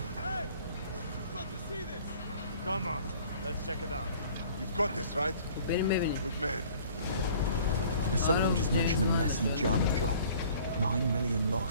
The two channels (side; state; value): both; inverted; correlation -0.52